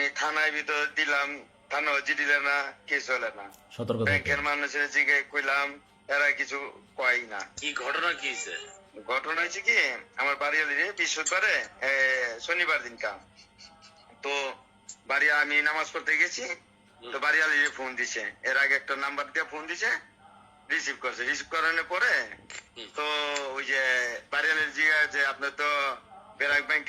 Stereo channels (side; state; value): both; identical; correlation 1.00